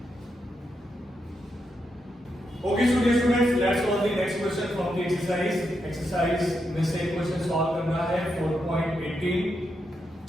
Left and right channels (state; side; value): normal; both; correlation 0.83